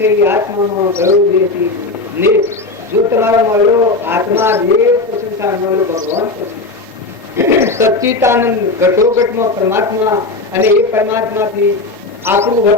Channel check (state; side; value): quieter; right; 3.3 dB